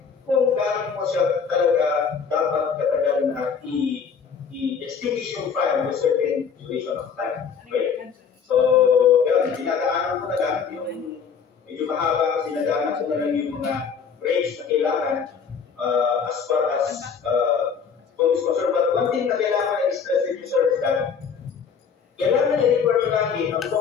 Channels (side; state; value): right; quieter; 6.4 dB